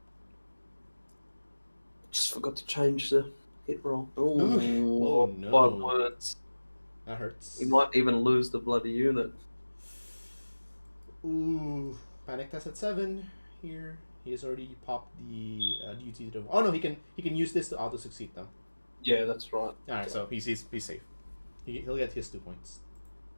Just forgot to change the hit roll. Ooh, oh no. 5 words. That hurts. He might even lose the bloody unit. Ooh, panic test at 7 here. He has already popped the duty to. Oh no, he can use this to auto succeed though. Yeah, that's right. All right, so he's safe. He'll get his 2 points.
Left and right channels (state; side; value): inverted; both; correlation -1.00